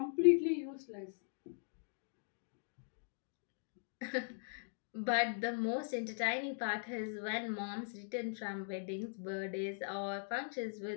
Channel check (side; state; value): right; silent; digital silence